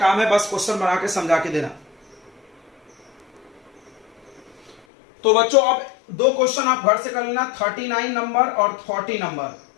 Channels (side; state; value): right; drops out; at 4.8 s